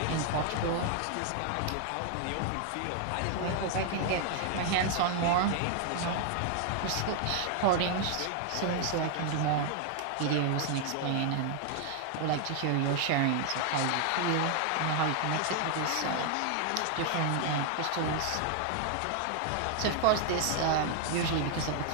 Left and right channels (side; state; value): both; different; correlation 0.00